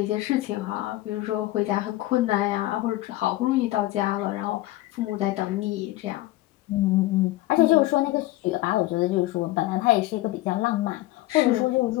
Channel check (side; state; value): right; quieter; 17.4 dB